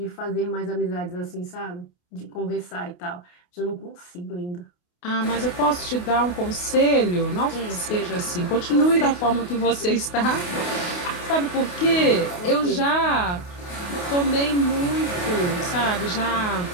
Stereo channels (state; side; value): late; right; 28 ms